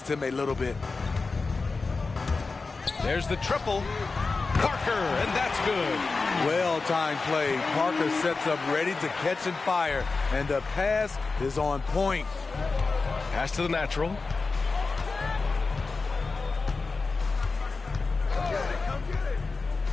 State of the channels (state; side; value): quieter; right; 4.1 dB